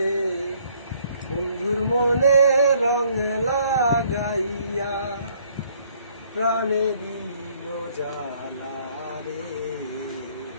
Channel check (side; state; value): both; inverted; correlation -0.64